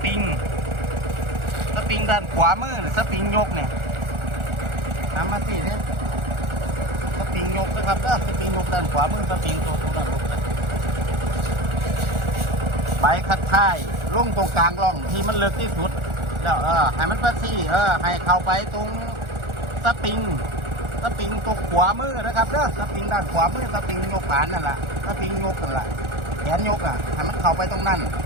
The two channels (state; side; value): late; left; 1.4 ms